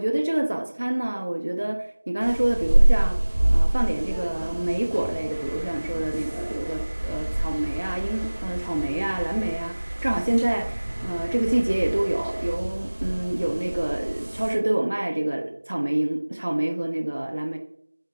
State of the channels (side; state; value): both; inverted; correlation -1.00